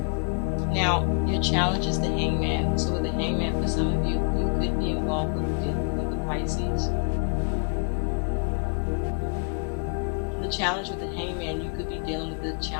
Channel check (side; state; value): right; quieter; 39.2 dB